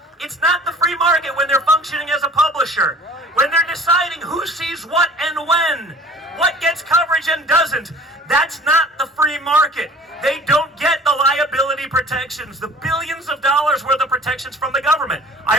it's not the free market when they're functioning as a publisher, when they're deciding who sees what and when, what gets coverage and doesn't. That's not the free market. They don't get the liability protections, the billions of dollars worth of protections from the government. I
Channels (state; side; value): normal; both; correlation 0.47